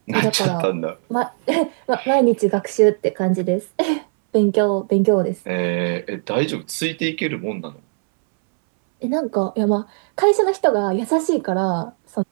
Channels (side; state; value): left; silent; 64 dB below the other